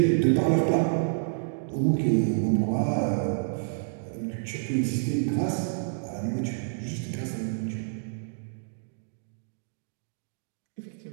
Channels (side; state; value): left; silent; digital silence